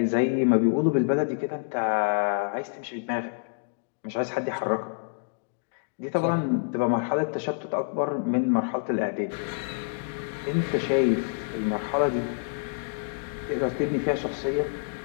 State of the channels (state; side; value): silent; right; digital silence